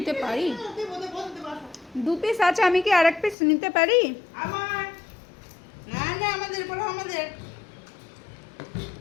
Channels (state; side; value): drops out; right; at 3.4 s